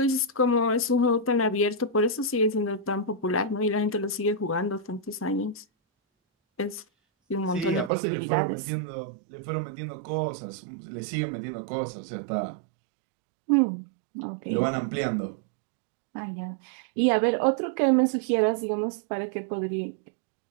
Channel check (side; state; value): left; drops out; at 7.9 s